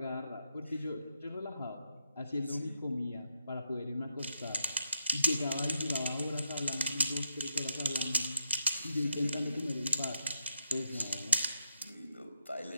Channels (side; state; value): both; inverted; correlation -0.82